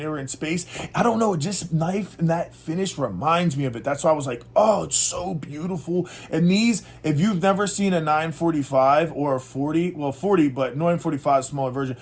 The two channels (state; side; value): identical; both; correlation 1.00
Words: they were in space. I don't know, just knife and that finish reminds me of it. That's why I was like, oh, it's so beautiful. And these, if you've never seen a 945 or a 40, but 945 is a smaller version,